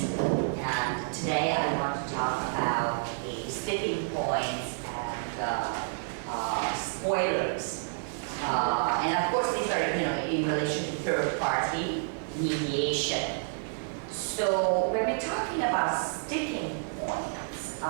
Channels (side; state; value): left; silent; digital silence